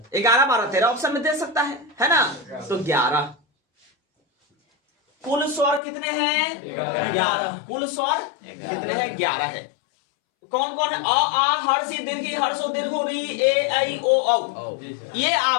11 12 13 ऑप्शन में दे सकता है ना? तो 11। कुल स्वर कितने हैं? 11। कुल स्वर कितने हैं? 11 है। कौन कौन है? अ आ हर्ष ई दीर्घ ई हर्ष ओ दीर्घ री ए ऐ ओ औ। ये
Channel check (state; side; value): drops out; right; at 5.8 s